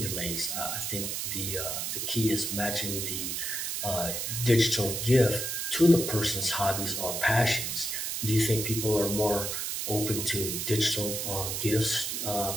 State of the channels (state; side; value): noise; right; hiss, 2 dB below the sound